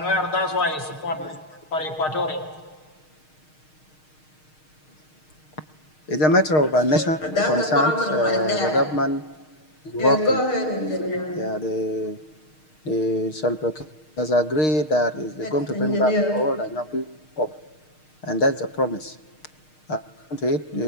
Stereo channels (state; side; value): late; right; 6.5 ms